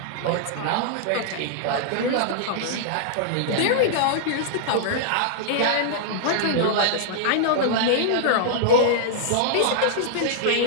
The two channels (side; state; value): both; different; correlation -0.01